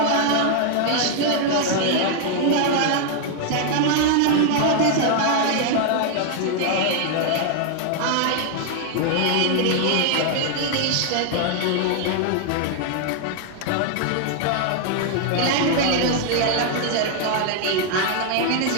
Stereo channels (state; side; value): different; both; correlation 0.00